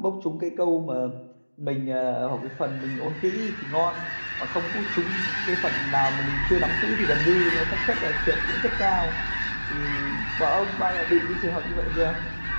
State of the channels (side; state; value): both; inverted; correlation -1.00